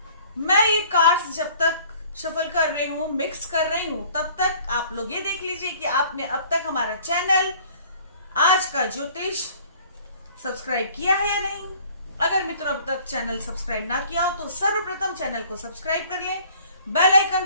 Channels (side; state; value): both; inverted; correlation -0.53